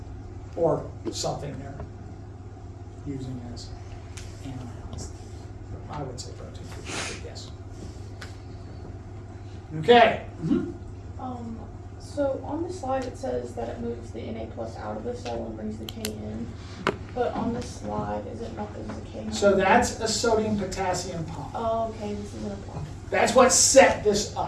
Or something they're using as anions. I would say protein, but yes. Okay. Mm-hmm. So on the slide it says that it moves the Na plus out of the cell and brings the K in, but on this slide, is it not, there's a K? So that's a sodium-potassium pump. Oh, okay, this isn't a pump. That's what set this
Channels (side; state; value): both; identical; correlation 1.00